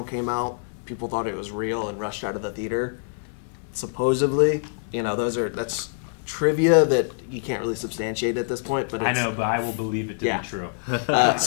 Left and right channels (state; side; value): silent; right; digital silence